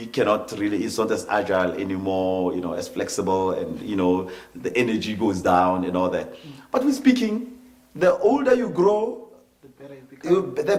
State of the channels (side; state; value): both; identical; correlation 1.00